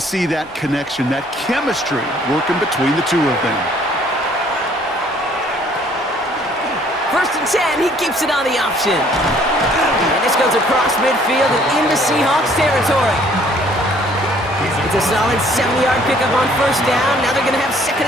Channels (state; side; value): normal; both; correlation 0.60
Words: that connection, that chemistry working between the two of them. First and 10, he keeps it on the option. And this goes across midfield and into Seahawks territory. It's a solid 70-yard pickup on first down. Now they're going to have